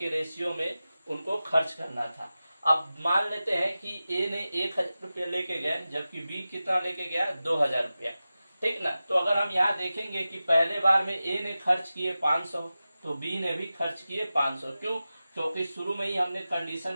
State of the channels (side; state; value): both; inverted; correlation -0.94